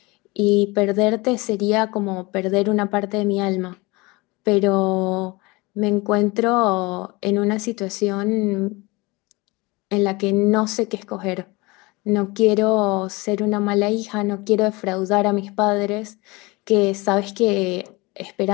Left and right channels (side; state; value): right; quieter; 24.3 dB